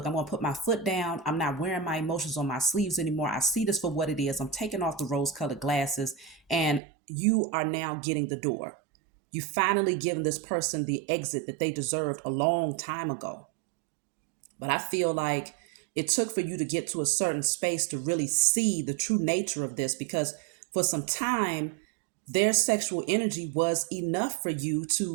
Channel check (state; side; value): drops out; left; at 6.8 s